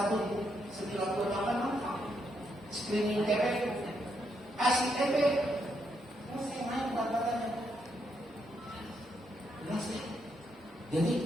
1928 screening TB, kasih TB, saya naik berat badannya. Jadi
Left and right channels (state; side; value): normal; both; correlation 0.78